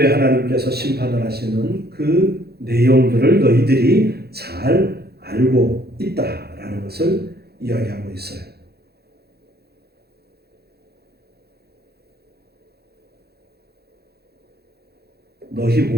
하나님께서 심판을 하시는 그 내용들을 너희들이 잘 알고 있다라는 것을 이야기하고 있어요. 너희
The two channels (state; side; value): late; left; 0.46 ms